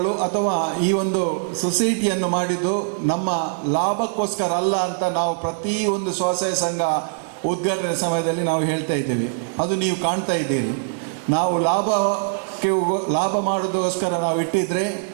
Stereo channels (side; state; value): left; silent; digital silence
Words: ಅಥವಾ ಈ ಒಂದು ಸೊಸೈಟಿಯನ್ನು ಮಾಡಿದ್ದು ನಮ್ಮ ಲಾಭಕ್ಕೋಸ್ಕರ ಅಲ್ಲ ಅಂತ ನಾವು ಪ್ರತಿಯೊಂದು ಸ್ವಸಹಾಯ ಸಂಘ ಉದ್ಘಾಟನೆ ಸಮಯದಲ್ಲಿ ನಾವು ಹೇಳ್ತಾ ಇದ್ದೇವೆ. ಅದು ನೀವು ಕಾಣ್ತಾ ಇದ್ದೀರಿ. ನಾವು ಲಾಭ ಮಾಡೋದಕ್ಕೋಸ್ಕರ ನಾವು ಇಟ್ಟಿದ್ರೆ